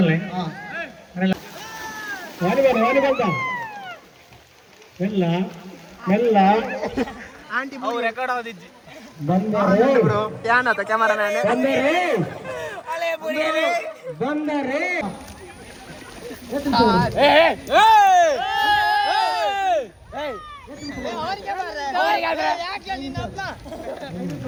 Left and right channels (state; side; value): identical; both; correlation 1.00